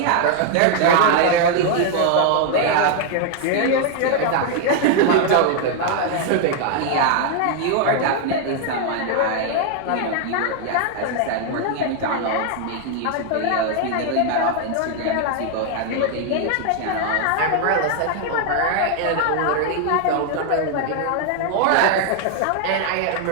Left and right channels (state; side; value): different; both; correlation 0.00